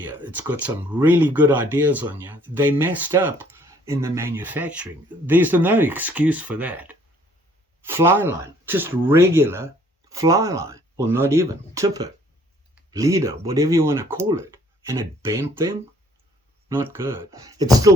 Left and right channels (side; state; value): both; normal; correlation 0.61